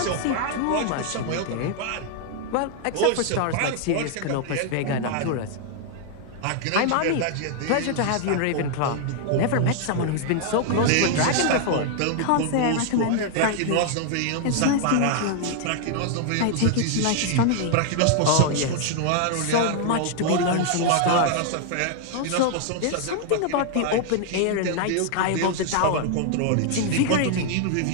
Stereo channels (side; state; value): both; different; correlation 0.00